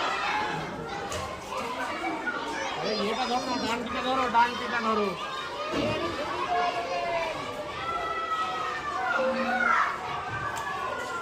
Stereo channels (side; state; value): both; identical; correlation 1.00